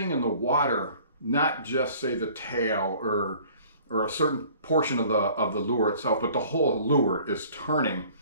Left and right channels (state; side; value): inverted; both; correlation -0.51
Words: in the water, not just say the tail or a certain portion of the lure itself, but the whole lure is turning.